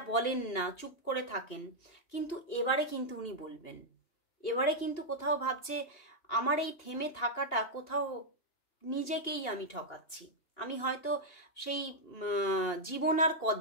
বলেন না, চুপ করে থাকেন। কিন্তু এবারে কিন্তু উনি বলবেন, এবারে কিন্তু কোথাও ভাবছে আমার এই থেমে থাকাটা কোথাও নিজেকেই আমি ঠকাচ্ছি, আমি হয়তো সেই জীবন আর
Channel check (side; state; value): right; late; 2.8 ms